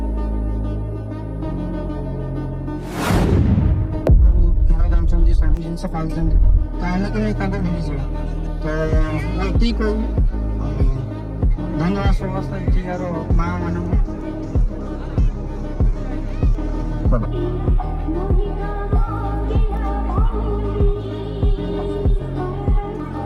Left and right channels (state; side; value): identical; both; correlation 1.00